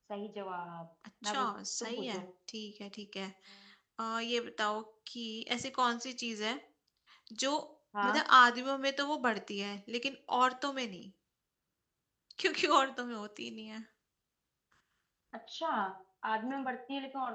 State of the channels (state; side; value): identical; both; correlation 1.00